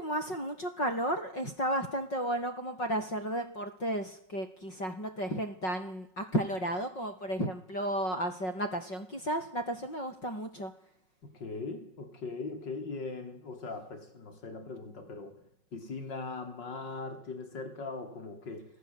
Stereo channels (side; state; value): right; late; 5.4 ms